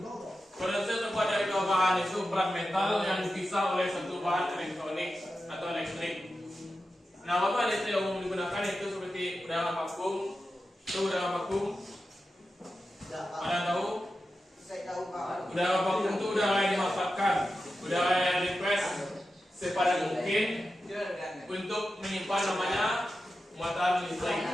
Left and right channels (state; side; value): normal; both; correlation 0.91